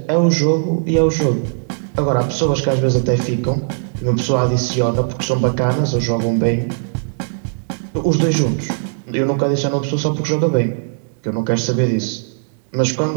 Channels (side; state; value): left; silent; digital silence